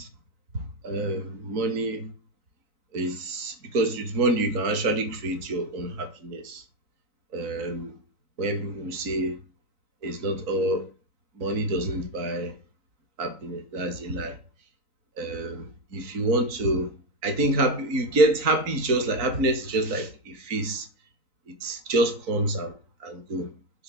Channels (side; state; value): left; late; 3.9 ms